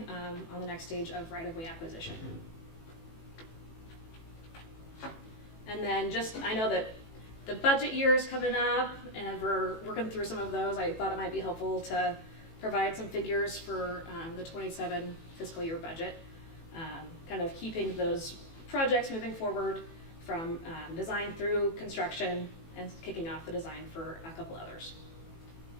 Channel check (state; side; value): late; right; 18 ms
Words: on the next stage of right-of-way acquisition. And then I know that the budget year is coming up and we're working through some of those. I thought it might be helpful to provide some figures for the 27 fiscal year budget, kind of keeping those projects moving forward from design through construction and kicking off the design for a couple others.